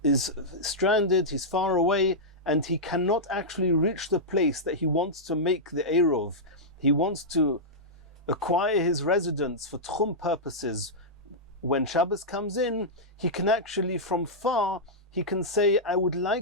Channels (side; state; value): both; normal; correlation -0.10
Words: is stranded, he's far away, and he cannot actually reach the place that he wants to make the Eirov, he wants to acquire his residence for Tchum purposes. When Shabbos comes in, he can actually, from far, he can say, I would